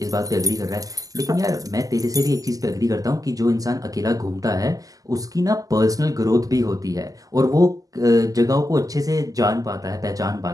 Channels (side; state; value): left; late; 0.17 ms